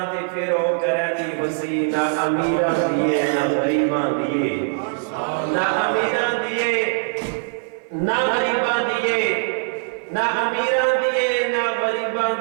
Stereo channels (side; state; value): left; silent; 58 dB below the other